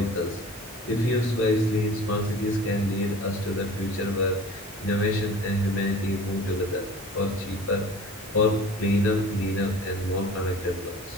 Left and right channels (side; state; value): both; normal; correlation 0.43